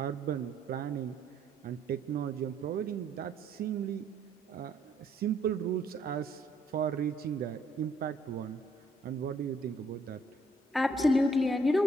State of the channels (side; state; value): both; normal; correlation 0.67